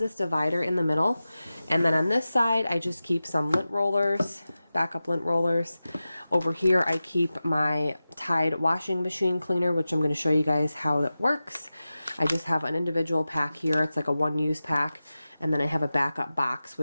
divider in the middle, and then on this side I just keep some lint rollers, backup lint rollers. Over here I keep my Tide washing machine cleaner, which I'm going to show you guys how that works. I just have an individual pack here, it's like a one-use pack, and then I have a backup box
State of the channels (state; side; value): inverted; both; correlation -0.95